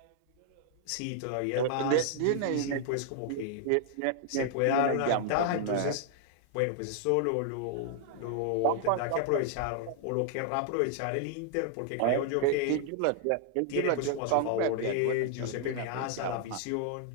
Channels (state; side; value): different; both; correlation -0.01